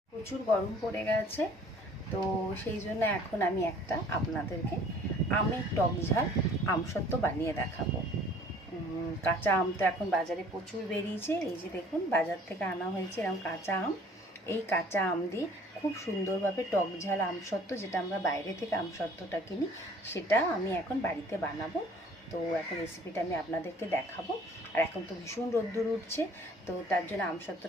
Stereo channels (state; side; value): normal; both; correlation 0.53